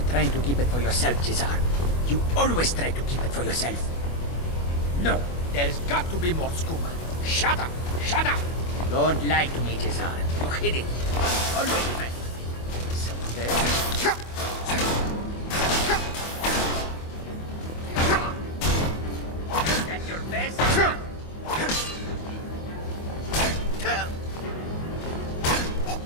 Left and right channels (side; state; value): right; late; 24 ms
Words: trying to keep it for yourself, Cesar. You always try to keep it for yourself. No, there's got to be more scuba. Shut up! Shut up! Don't lie to me, Cesar. You hid it. Always right. Someone there? That's your best?